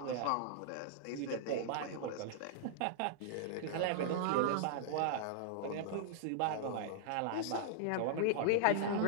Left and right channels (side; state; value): both; different; correlation -0.01